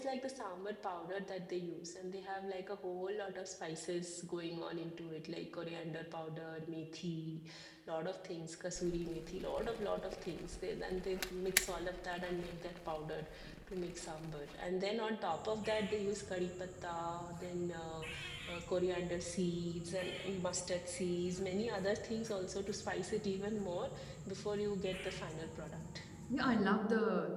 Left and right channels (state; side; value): identical; both; correlation 1.00